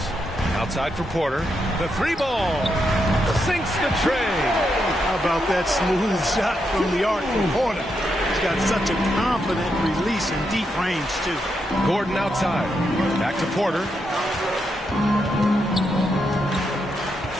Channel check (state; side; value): normal; both; correlation 0.82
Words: outside for Porter. The 3-ball, sinks the tray. How about that smooth shot from the arc from Porter? He's got such a confident release in deep range, too. Gordon outside. Back to Porter.